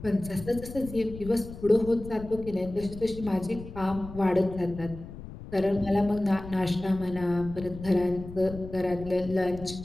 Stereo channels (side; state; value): left; noise; rumble, 13 dB below the sound